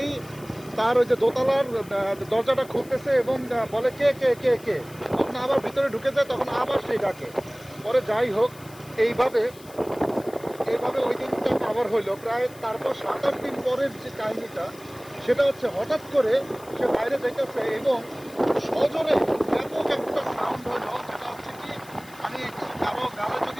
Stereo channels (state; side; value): noise; left; hiss, 22 dB below the sound